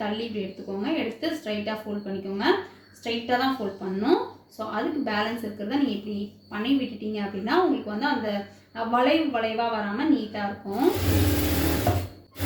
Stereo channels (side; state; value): both; identical; correlation 1.00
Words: தள்ளி இப்படி எடுத்துக்கோங்க. எடுத்து ஸ்ட்ரைட்டாக ஃபோல்ட் பண்ணிக்கோங்க. ஸ்ட்ரைட்டாக தான் ஃபோல்ட் பண்ணணும். ஸோ அதுக்கு பேலன்ஸ் இருக்கிறத நீங்கள் இப்படி பண்ணி விட்டுட்டீங்க அப்படின்னா உங்களுக்கு வந்து அந்த வளைவாக வராமல் நீட்டாக இருக்கும்.